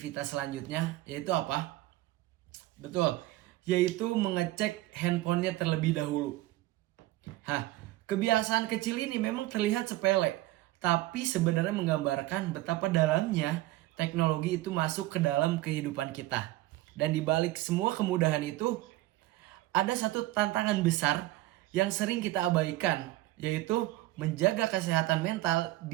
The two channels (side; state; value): left; quieter; 17.1 dB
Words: selanjutnya yaitu apa? Betul, yaitu mengecek handphonenya terlebih dahulu. Kebiasaan kecil ini memang terlihat sepele, tapi sebenarnya menggambarkan betapa dalamnya teknologi itu masuk ke dalam kehidupan kita. Dan di balik semua kemudahan itu, ada satu tantangan besar yang sering kita abaikan, yaitu menjaga kesehatan mental